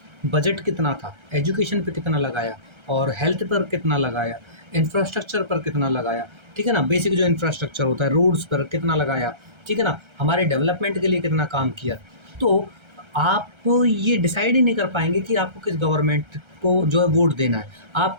बजट कितना था, एजुकेशन पे कितना लगाया और हेल्थ पर कितना लगाया, इंफ्रास्ट्रक्चर पर कितना लगाया, ठीक है ना, बेसिक जो इंफ्रास्ट्रक्चर होता है, रोड्स पर कितना लगाया, ठीक है ना, हमारे डेवलपमेंट के लिए कितना काम किया, तो आप ये डिसाइड ही नहीं कर पाएंगे कि आपको किस गवर्नमेंट को जो है वोट देना है। आप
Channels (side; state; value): left; late; 1.3 ms